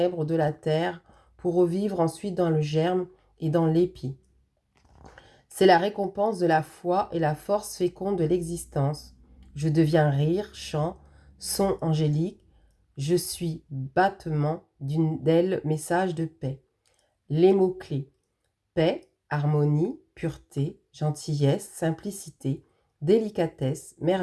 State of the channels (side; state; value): both; identical; correlation 1.00